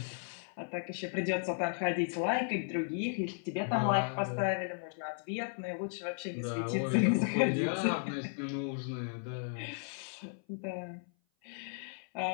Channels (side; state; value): right; silent; 54 dB below the other